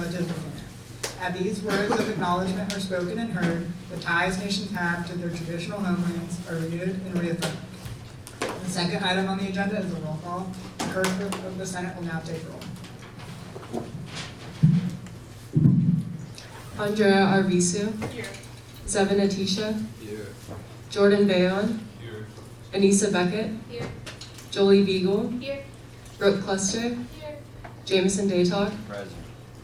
within it. As these words of acknowledgement are spoken and heard, the ties nations have to their traditional homelands are renewed and reaffirmed. The second item on the agenda is a roll call. The clerk of the Senate will now take roll. Andrea Arvisu. Here. Zevin Atisha. Here. Jordan Bayon. Here. Anissa Beckett. Here. Jolie Beagle. Here. Brooke Cluster. Here. Jameson Daytalk. Present.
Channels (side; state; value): both; identical; correlation 1.00